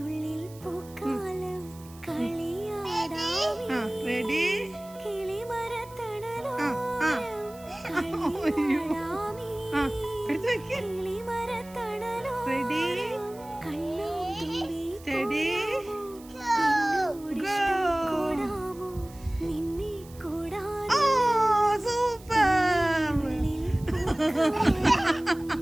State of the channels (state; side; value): noise; right; hiss, 23 dB below the sound